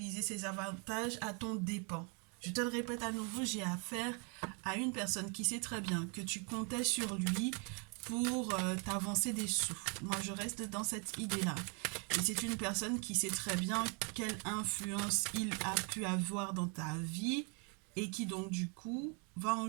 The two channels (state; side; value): quieter; left; 36.2 dB